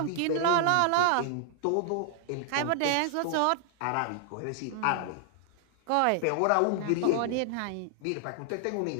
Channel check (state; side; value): different; both; correlation 0.00